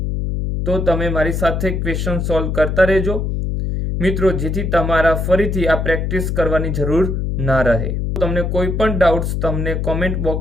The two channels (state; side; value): noise; left; hum, 1 dB below the sound